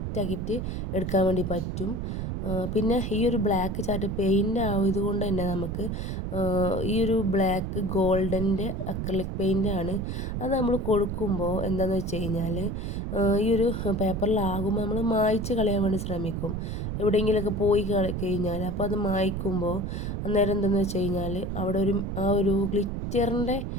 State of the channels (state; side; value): noise; right; rumble, 3 dB below the sound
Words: എടുക്കാൻ വേണ്ടി പറ്റും. പിന്നെ ഈ ഒരു ബ്ലാക്ക് ചാർട്ട് പെയിൻ്റ് ആയതുകൊണ്ട് തന്നെ നമുക്ക് ഈ ഒരു ബ്ലാക്ക് ഗോൾഡൻ്റെ അക്രിലിക് പെയിൻ്റാണ്. അത് നമ്മൾ കൊടുക്കുമ്പോൾ എന്താണെന്ന് വെച്ച് കഴിഞ്ഞാൽ ഈ ഒരു പേപ്പറിലാകുമ്പോൾ നമ്മൾ മായ്ച്ച് കളയാൻ വേണ്ടി ശ്രമിക്കും. എവിടെയെങ്കിലുമൊക്കെ പോയി കഴിഞ്ഞാൽ അപ്പോൾ അത് മായ്ക്കുമ്പോൾ അന്നേരം എന്താണെന്ന് വെച്ച് കഴിഞ്ഞാൽ അവിടെ ആ ഒരു ഗ്ലിറ്ററിൻ്റെ